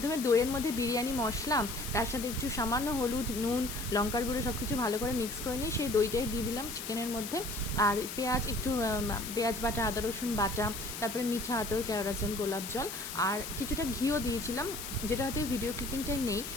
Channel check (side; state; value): left; noise; hiss, 8 dB below the sound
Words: দইয়ের মধ্যে বিরিয়ানি মশলা, তার সাথে একটু সামান্য হলুদ, নুন, লঙ্কার গুঁড়ো সব কিছু ভালো করে মিক্স করে নিই। সেই দইটাই দিয়ে দিলাম চিকেনের মধ্যে। আর পেঁয়াজ, একটু পেঁয়াজ বাটা, আদা রসুন বাটা, তারপরে মিঠা আতর, কেওড়া জল, গোলাপ জল, আর কিছুটা ঘিও দিয়েছিলাম, যেটা হয়তো ভিডিও ক্লিপিংটা নেই।